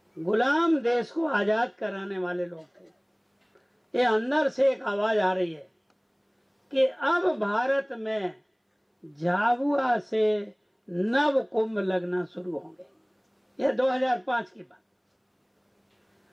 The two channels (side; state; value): both; identical; correlation 1.00